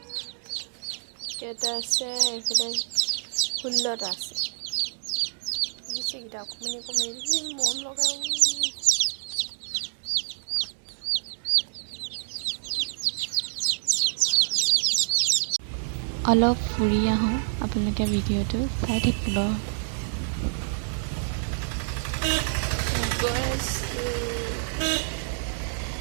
কেইটা আছে, এইফালে 16টা আছে। দিছেকেইটা অকণমানি অকণমানি মৰম লগা। অলপ ফুৰি আহোঁ, আপোনালোকে ভিডিঅ'টো চাই থাকিব।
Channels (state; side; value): silent; left; digital silence